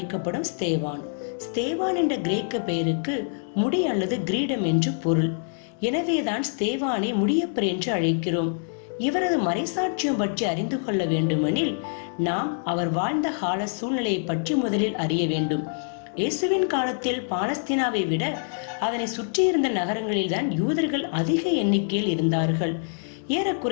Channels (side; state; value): right; silent; digital silence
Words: ஸ்தேவான். ஸ்தேவான் என்ற கிரேக்க பெயருக்கு முடி அல்லது கிரீடம் என்று பொருள். எனவேதான் ஸ்தேவானை முடியப்பர் என்று அழைக்கிறோம். இவரது மறைசாட்சியம் பற்றி அறிந்து கொள்ள வேண்டுமெனில் நாம் அவர் வாழ்ந்த கால சூழ்நிலையை பற்றி முதலில் அறிய வேண்டும். இயேசுவின் காலத்தில் பாலஸ்தீனாவை விட அதனை சுற்றியிருந்த நகரங்களில்தான் யூதர்கள் அதிக எண்ணிக்கையில் இருந்தார்கள்.